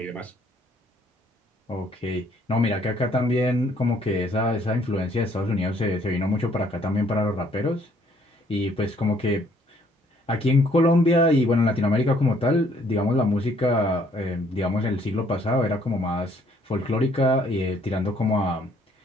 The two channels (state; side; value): normal; both; correlation 0.64